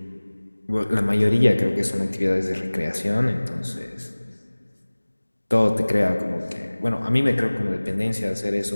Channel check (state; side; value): inverted; both; correlation -1.00